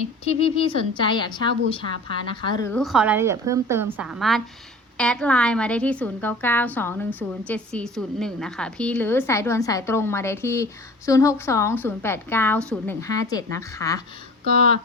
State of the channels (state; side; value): normal; both; correlation 0.42